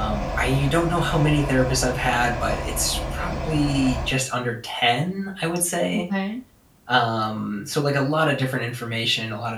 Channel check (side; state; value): both; identical; correlation 1.00